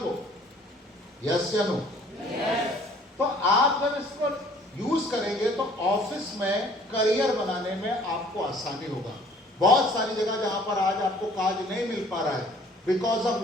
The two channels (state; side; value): normal; both; correlation 0.55